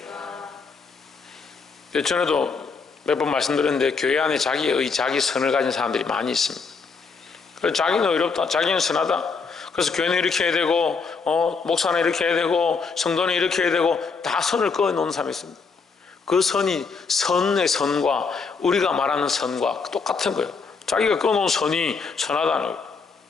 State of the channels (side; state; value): right; quieter; 5.0 dB